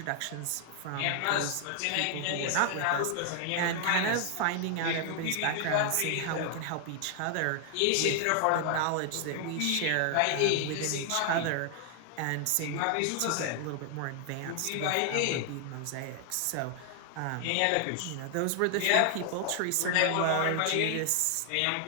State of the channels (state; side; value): different; both; correlation 0.00